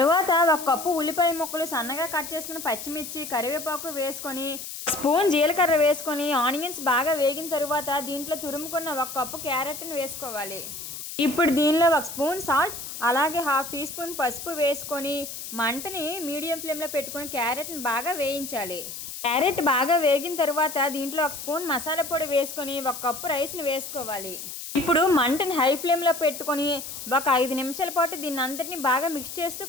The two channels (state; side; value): noise; left; hiss, 9 dB below the sound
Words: 1 కప్పు ఉల్లిపాయ ముక్కలు, సన్నగా కట్ చేసుకున్న పచ్చిమిర్చి, కరివేపాకు వేసుకొని స్పూన్ జీలకర్ర వేసుకొని ఆనియన్స్ బాగా వేగిన తరువాత దీంట్లో తురుముకున్న 1 కప్పు క్యారెట్ని వేసుకోవాలి. ఇప్పుడు దీనిలో 1 స్పూన్ సాల్ట్ అలాగే 1/2 టీ స్పూన్ పసుపు వేసుకొని మంటని మీడియం ఫ్లేమ్లో పెట్టుకొని క్యారెట్ని బాగా వేయించాలి. క్యారెట్ బాగా వేగిన తరువాత దీంట్లో 1 స్పూన్ మసాలా పొడి వేసుకొని 1 కప్పు రైస్ని వేసుకోవాలి. ఇప్పుడు మంటని హై ఫ్లేమ్లో పెట్టుకొని ఒక 5 నిమిషాల పాటు దీన్ని అంతటిని బాగా మిక్స్ చేస్తూ